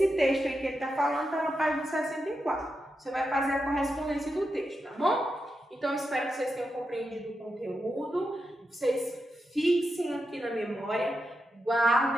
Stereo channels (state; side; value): normal; both; correlation 0.87